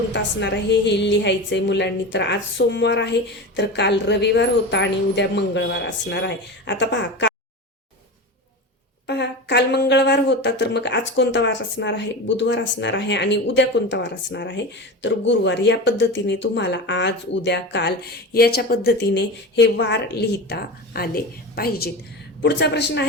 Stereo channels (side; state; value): both; normal; correlation 0.26